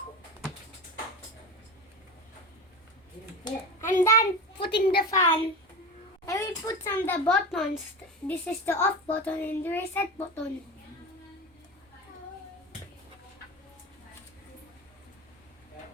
I'm done putting the fan. I will put some the buttons. This is the off button and the reset button.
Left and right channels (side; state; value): both; normal; correlation 0.25